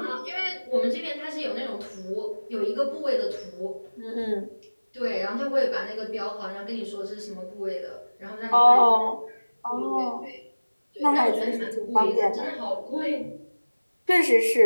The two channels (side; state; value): both; inverted; correlation -1.00